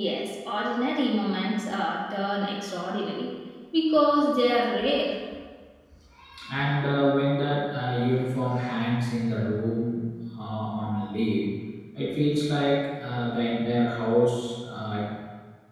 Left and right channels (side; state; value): both; identical; correlation 1.00